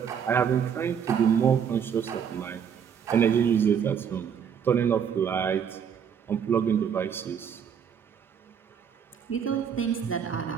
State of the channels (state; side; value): quieter; left; 7.7 dB